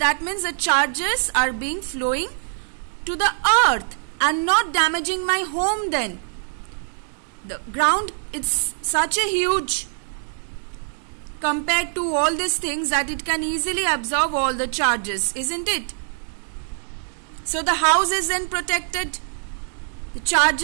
means the charges are being flowing to the earth and not damaging my home then. The ground, it's such a huge, compared to all these things, that it can easily absorb all the charges, isn't it? So the house is then protected. The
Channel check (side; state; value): left; silent; digital silence